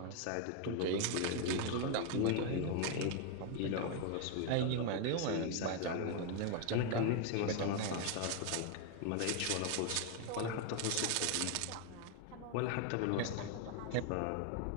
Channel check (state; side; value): different; both; correlation 0.01